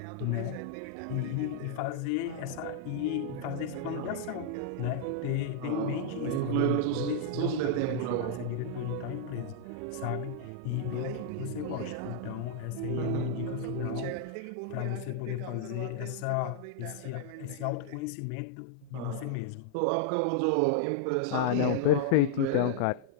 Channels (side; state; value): both; different; correlation -0.01